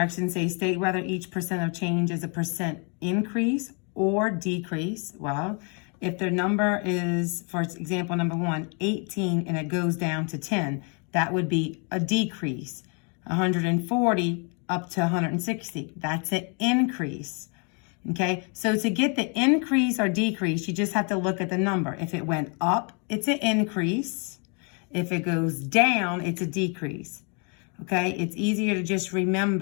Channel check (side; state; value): right; quieter; 36.2 dB